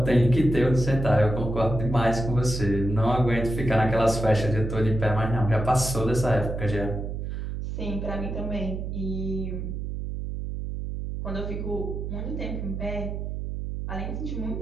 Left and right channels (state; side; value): noise; right; hum, 5 dB below the sound